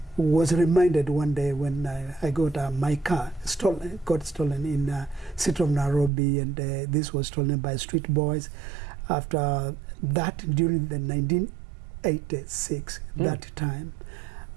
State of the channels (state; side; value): drops out; left; at 6.1 s